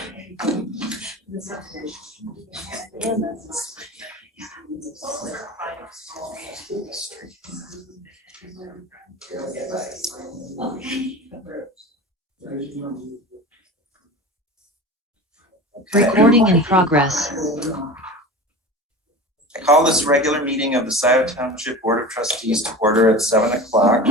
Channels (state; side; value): normal; both; correlation 0.32